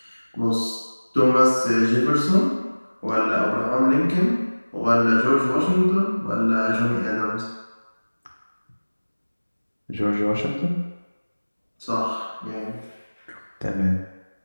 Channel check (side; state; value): both; inverted; correlation -1.00